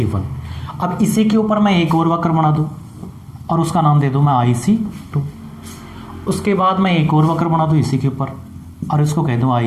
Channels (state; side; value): identical; both; correlation 1.00